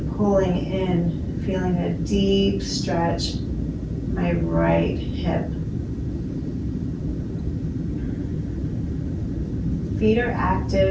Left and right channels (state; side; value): identical; both; correlation 1.00